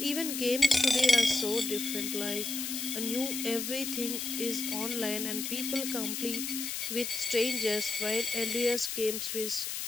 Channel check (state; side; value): noise; left; hiss, 4 dB below the sound